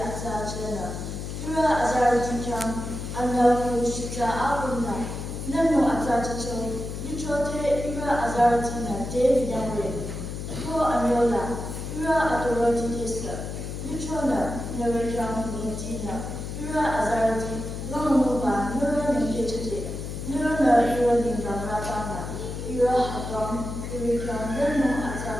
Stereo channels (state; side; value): noise; left; hum, 6 dB below the sound